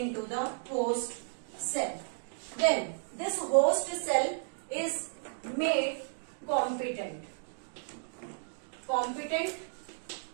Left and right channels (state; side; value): silent; left; digital silence